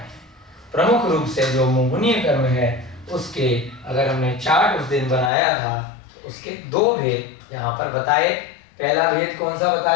प्रमुख रूप से जो मोहनीय कर्म है उसके अगर हमने चार्ट उस दिन बनाया था तो उसके 2 भेद यहाँ पर बताए। पहला भेद कौन सा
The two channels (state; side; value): drops out; right; at 5.3 s